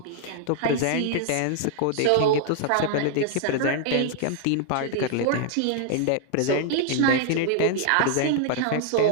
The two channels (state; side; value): different; both; correlation 0.00